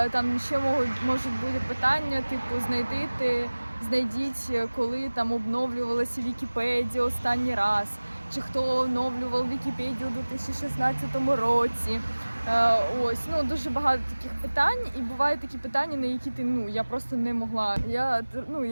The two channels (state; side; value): inverted; both; correlation -1.00